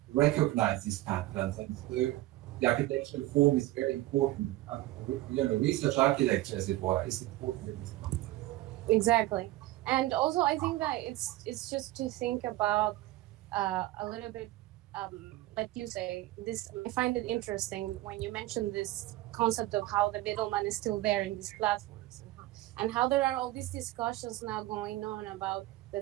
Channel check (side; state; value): left; quieter; 17.1 dB